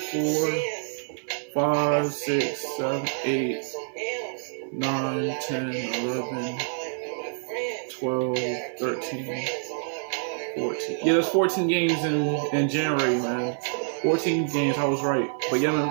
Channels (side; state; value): left; silent; 58 dB below the other